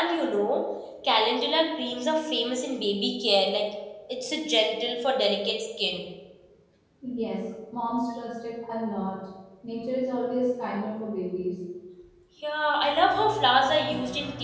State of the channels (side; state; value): both; identical; correlation 1.00